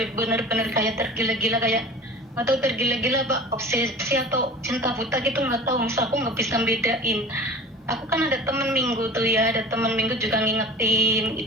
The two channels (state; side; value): normal; both; correlation 0.38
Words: benar-benar kayak tergila-gila, kayak nggak tahu tergila-gila obsesi atau cinta buta gitu, nggak tahu, misal aku nggak bisa bedain. Aku kan ada temen minggu tuh ya, ada temen minggu juga ngingetin